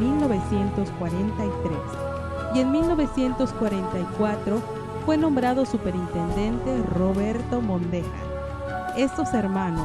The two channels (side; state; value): both; identical; correlation 1.00